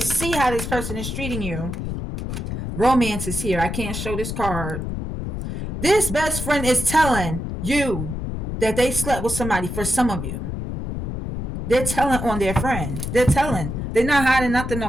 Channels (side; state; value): left; noise; rumble, 5 dB below the sound